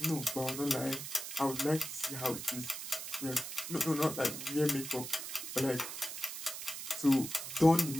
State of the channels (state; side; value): noise; right; hiss, 7 dB below the sound